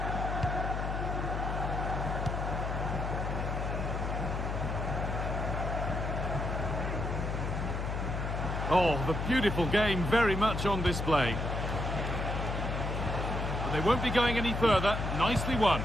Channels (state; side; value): noise; left; hum, 2 dB below the sound